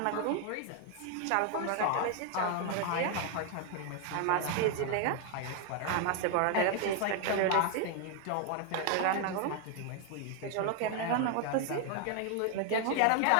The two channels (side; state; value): both; different; correlation 0.00